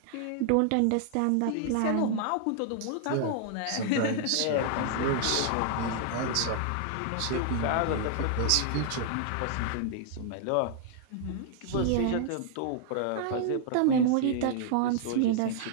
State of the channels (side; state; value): both; different; correlation -0.01